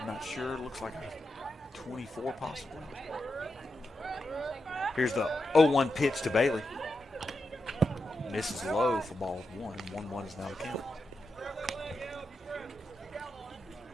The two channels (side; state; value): both; normal; correlation 0.87